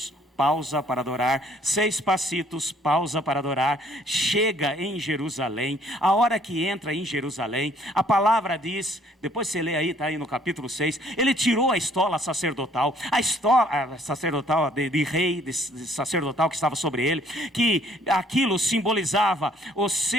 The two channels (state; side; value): normal; both; correlation 0.61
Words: pausa para adorar, 6 passitos, pausa para adorar, chega em Jerusalém. A hora que entra em Jerusalém, a palavra diz, depois você lê aí, está aí no capítulo 6, ele tirou a estola sacerdotal, a estola sacerdotal de rei, de sacerdotal que estava sobre ele, que aquilo simbolizava o